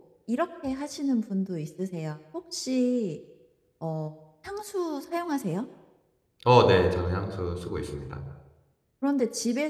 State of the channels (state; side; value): identical; both; correlation 1.00